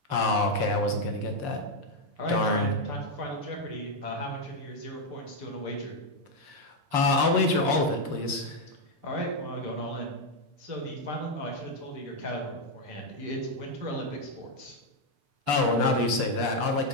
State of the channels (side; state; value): left; late; 6.8 ms